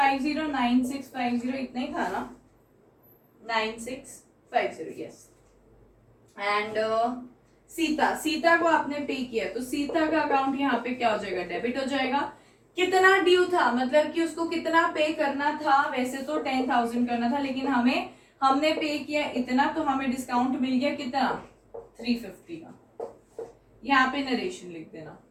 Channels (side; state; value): both; identical; correlation 1.00